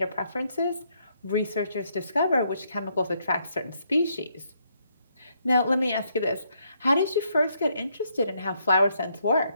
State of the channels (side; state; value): both; inverted; correlation -0.74